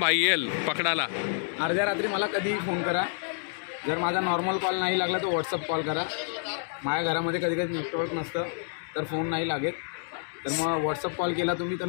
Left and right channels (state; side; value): silent; right; digital silence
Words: येईल पकडायला. अर्ध्या रात्री मला कधीही फोन करा. जर माझा नॉर्मल कॉल नाही लागला तर व्हॉट्सअप कॉल करा. माझ्या घरामध्ये कधी कधी नेटवर्क नसतं तर फोन नाही लागेल. तर मग व्हॉट्सअप कॉल केला तुम्ही तर